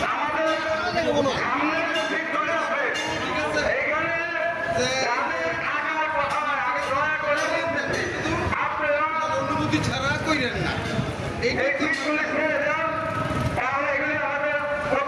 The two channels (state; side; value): identical; both; correlation 1.00